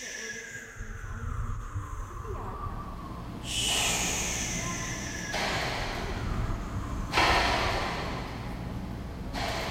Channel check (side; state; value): both; identical; correlation 1.00